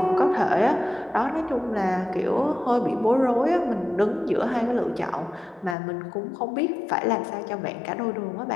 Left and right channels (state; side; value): drops out; right; at 5.8 s